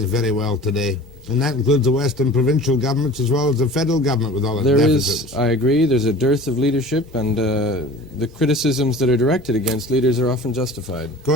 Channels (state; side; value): normal; both; correlation 0.41